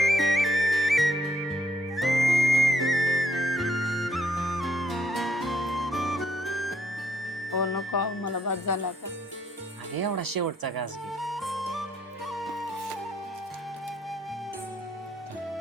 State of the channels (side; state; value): both; normal; correlation 0.70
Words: हो नको आहो, मला बाद झाला आता. अगं एवढा शेवटचा घास घे.